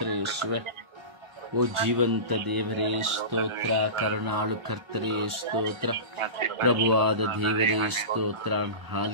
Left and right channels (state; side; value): late; left; 1.4 ms